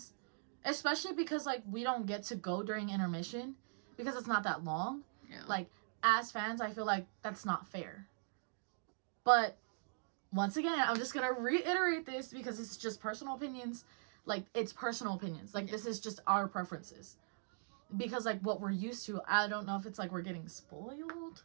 especially because, like, we don't get to go during intermission because it's not that long. Yeah. Like, as fans, I feel like that's not fair. But once again, I'm just going to reiterate this because it's just personal opinions. Like, it's personal opinions. Like, this is just our preferences. Because, like, what we're used to, I don't know if it's like we're getting spoiled.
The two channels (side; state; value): left; silent; digital silence